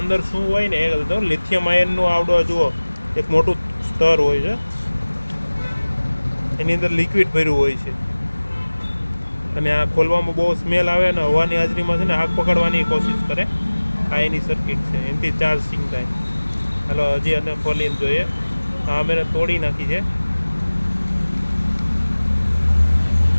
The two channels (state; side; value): inverted; both; correlation -1.00